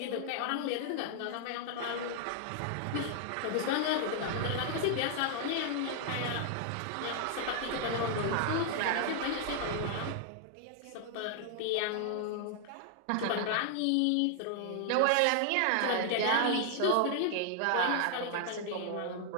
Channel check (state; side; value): different; both; correlation 0.00